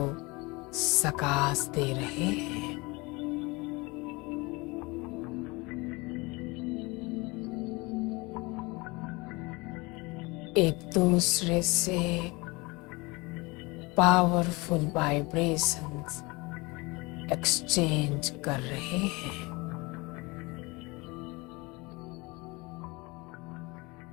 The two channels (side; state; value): right; quieter; 25.0 dB